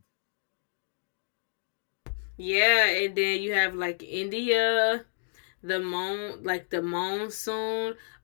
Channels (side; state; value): right; silent; digital silence